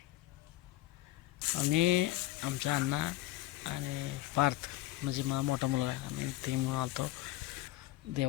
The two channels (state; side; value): quieter; right; 16.8 dB